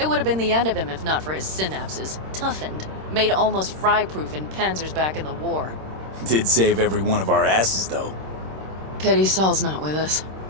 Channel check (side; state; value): left; late; 26 ms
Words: would have been the end of him if not for his synapses. Toughened, made almost fry-proof in panzers back in the war. Did save every one of our asses, though. Pity Saul's not with us.